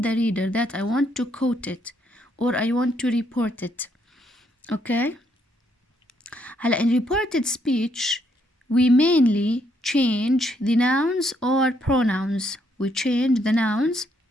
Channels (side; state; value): both; normal; correlation 0.73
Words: reader that I want to quote it or I want to report it. Okay? In reported speech, we mainly change the nouns or pronouns. We change the nouns